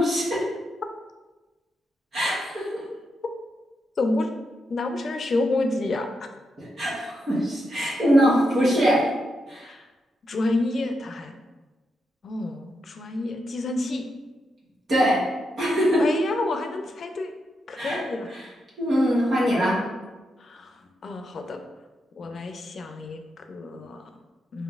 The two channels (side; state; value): both; normal; correlation 0.84